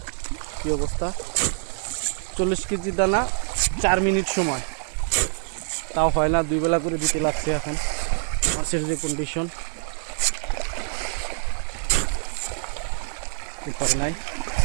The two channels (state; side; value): silent; left; 58 dB below the other